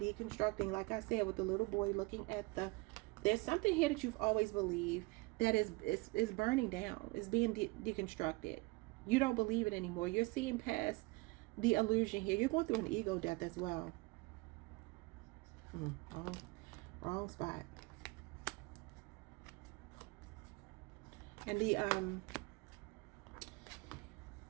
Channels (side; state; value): left; quieter; 24.7 dB